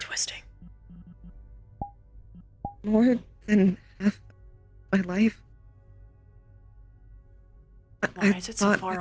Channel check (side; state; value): both; identical; correlation 1.00